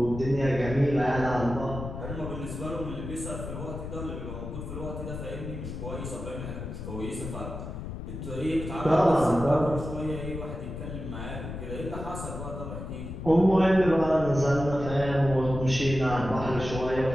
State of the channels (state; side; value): noise; left; rumble, 8 dB below the sound